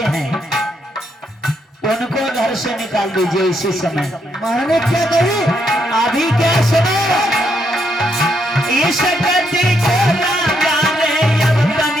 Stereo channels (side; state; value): both; normal; correlation 0.77